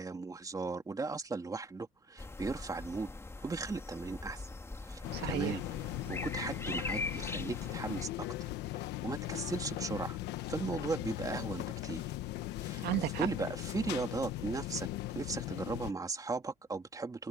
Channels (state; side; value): normal; both; correlation 0.48